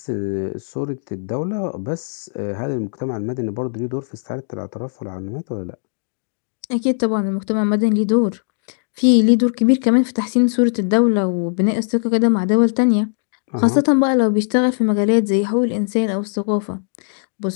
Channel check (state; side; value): silent; right; digital silence